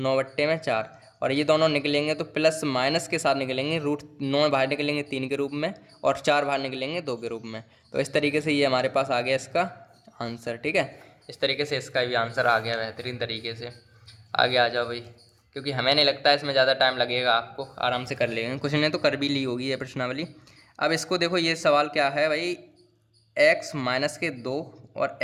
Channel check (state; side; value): identical; both; correlation 1.00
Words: और ये दोनों निकलेंगे तो प्लस माइनस के साथ निकलेंगे, रूट 9 बाहर निकलेंगे 3 के रूप में और 4 बाहर निकलेंगे 2 के रूप में, तो इस तरीके से ये हमारे पास आ गया इसका आंसर, ठीक है। इस तरीके से इसका भी आंसर आ गया बेहतरीन तरीके से। आगे आ जाओ भाई, क्योंकि हमें नहीं लगता इसमें ज़्यादा टाइम लगेगा, आपको आराम से कर लेंगे, कुछ ने तो कर भी ली होगी ये प्रश्नावली। अब इसको देखो, ये सवाल क्या है भाई, x माइनस के 2 और